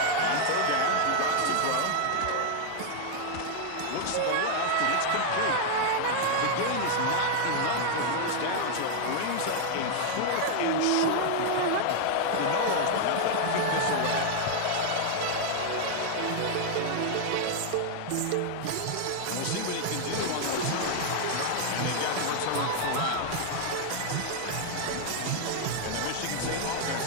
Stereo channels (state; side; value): different; both; correlation 0.00